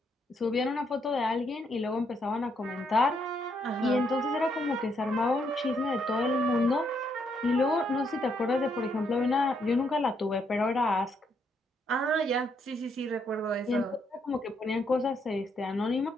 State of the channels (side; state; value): both; normal; correlation 0.75